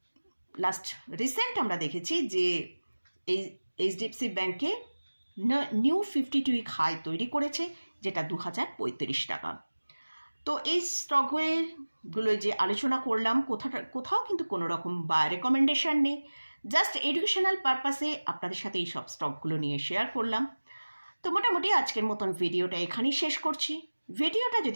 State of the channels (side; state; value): both; inverted; correlation -1.00